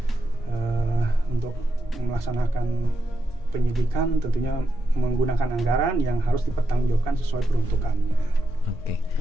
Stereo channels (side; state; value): both; normal; correlation 0.85